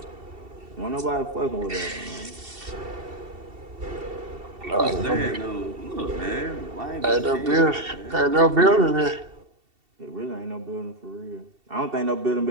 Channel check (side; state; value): left; late; 2.7 ms